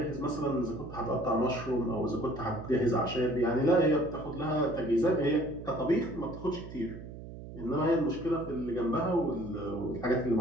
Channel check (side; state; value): right; noise; hum, 12 dB below the sound